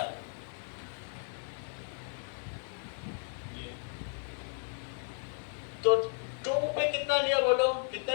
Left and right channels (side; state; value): right; silent; 55 dB below the other